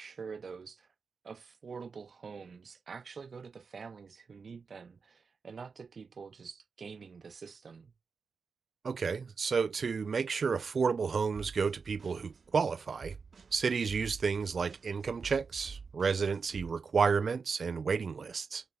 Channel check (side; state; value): left; quieter; 5.2 dB